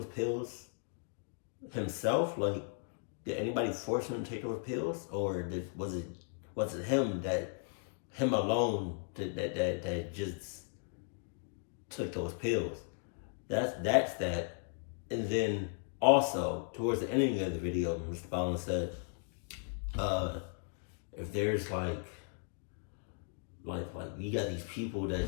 pills himself? Like, did anybody force him to take those pills? Or was it him alone that just took those pills? That's that. And then also, towards the ending of the video, MrBallen said, if there's like you got these people that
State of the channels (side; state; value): right; silent; 54 dB below the other